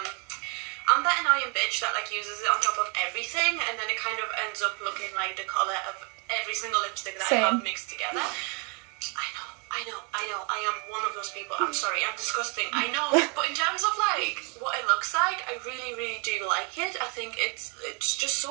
I'm that annoying bitch that like uses it on top of everything and then it kind of ends up looking like the colour of every single lipstick that I have mixed together. I am one of those people. I'm sorry, I'm disgusting, I know, but in terms of like what it looks like, I really do like it. I think it's just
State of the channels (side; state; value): left; quieter; 34.4 dB